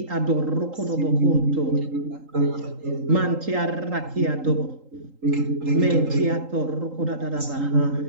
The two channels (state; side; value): late; left; 3.8 ms